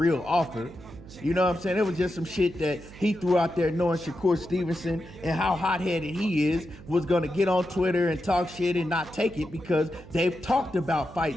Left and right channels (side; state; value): right; noise; hum, 18 dB below the sound